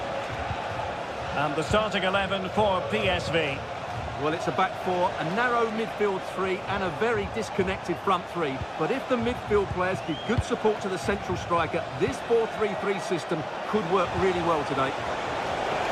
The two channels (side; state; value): both; identical; correlation 1.00